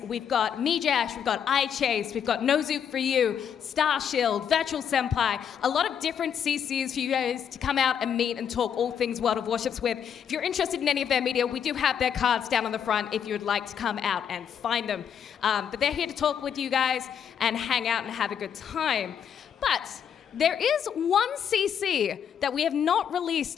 We've got Mijash, we've got iChase, we've got Nozook for You, Starshield, Virtual Senpai, a lot of different CCs for you guys to come out and meet and talk all things World of Warships with. If you're interested in any of their media, we do have their cards down on the front if you would like to come out and find them. But they're here to talk with you guys and hang out and have a good time. But there is one CC that we have not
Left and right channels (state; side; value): quieter; right; 8.2 dB